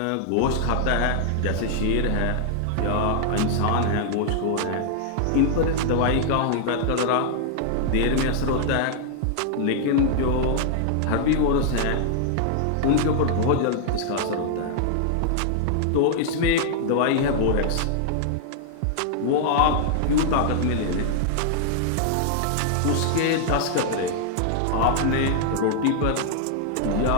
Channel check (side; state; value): both; different; correlation -0.01